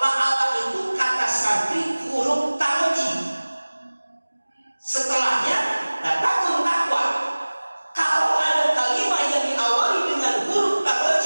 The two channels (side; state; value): both; inverted; correlation -1.00